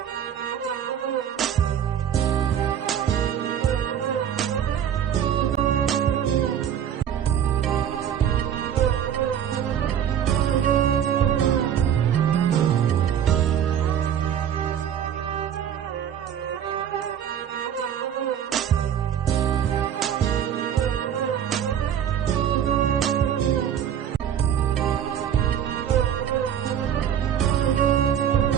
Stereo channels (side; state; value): left; quieter; 9.2 dB